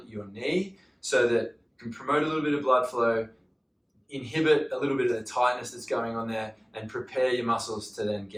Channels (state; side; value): identical; both; correlation 1.00